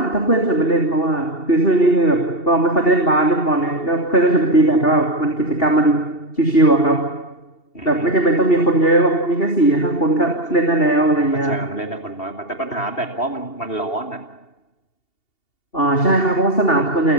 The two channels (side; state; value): right; late; 2.7 ms